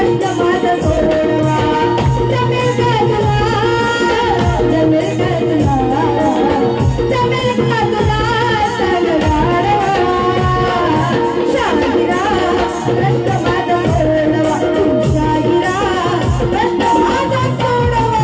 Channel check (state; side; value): identical; both; correlation 1.00